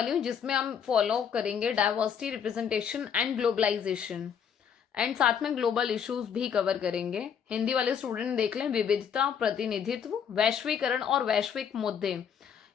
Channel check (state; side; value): quieter; right; 7.7 dB